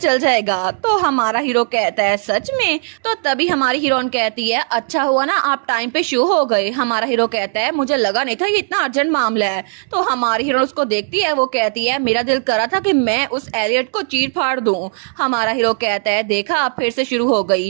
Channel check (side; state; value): left; silent; digital silence